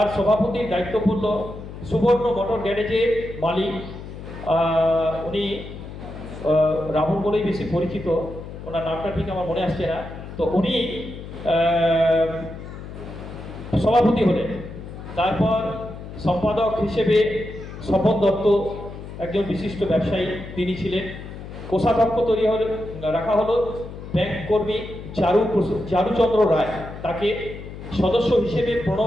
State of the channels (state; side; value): noise; left; hum, 12 dB below the sound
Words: সভাপতির দায়িত্ব পড়ল সুবর্ণ মোটর গ্যারেজের মালিক, উনি রাহুল বলেই বেশি পরিচিত, ওনার নামটা ঠিক আমার মনে আসছে না। তো উনি সভাপতি হলেন। তারপর সম্পাদক হিসেবে স্বপন দত্ত, একজন বিশিষ্ট ব্যবসায়ী, তিনি ছিলেন। কোষাধ্যক্ষ তৈরি হলে রাখা হলো ব্যাংক কর্মী চারুচন্দ্র রায়, তাকে সদস্য হিসেবে